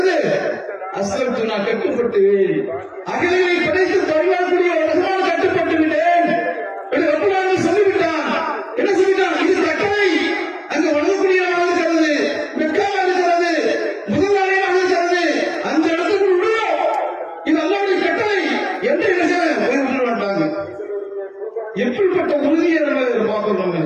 அஸ்லம்து நான் கட்டுப்பட்டு அகிலங்களை படைத்து பரிமாறக்கூடிய ரஹ்மான் கட்டுப்பட்டு விட்டேன் என்று ரப்புல் ஆலமீன் சொல்லிவிட்டான். என்ன சொல்லிட்டான், இது கட்டளை, அங்கு வணங்கக்கூடிய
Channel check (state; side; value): identical; both; correlation 1.00